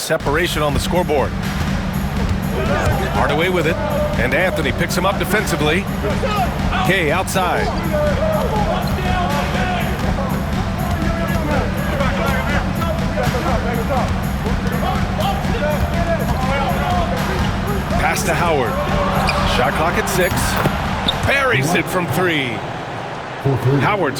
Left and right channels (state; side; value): identical; both; correlation 1.00